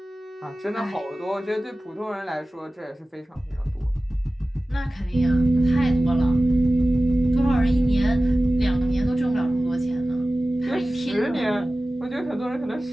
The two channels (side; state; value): both; normal; correlation 0.96